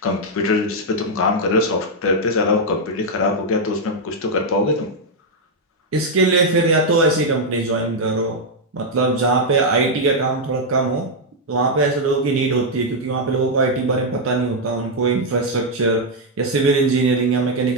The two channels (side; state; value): both; normal; correlation -0.01